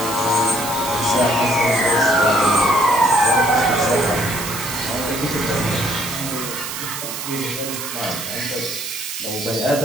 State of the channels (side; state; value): right; noise; hiss, 7 dB below the sound